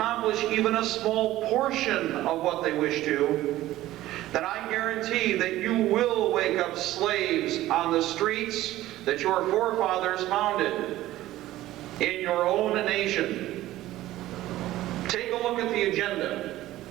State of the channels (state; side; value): quieter; left; 15.4 dB